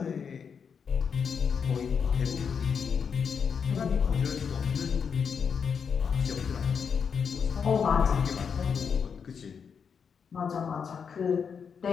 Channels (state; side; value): quieter; right; 6.5 dB